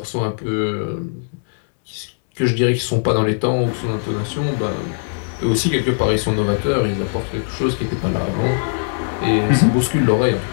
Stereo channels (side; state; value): right; silent; digital silence